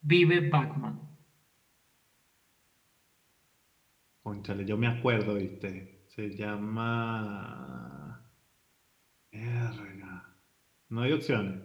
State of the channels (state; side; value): identical; both; correlation 1.00